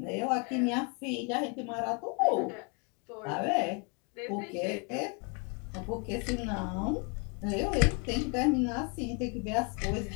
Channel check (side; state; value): right; quieter; 34.7 dB